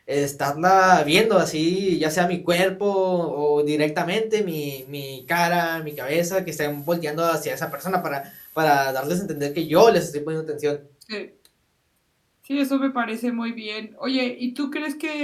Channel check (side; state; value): both; identical; correlation 1.00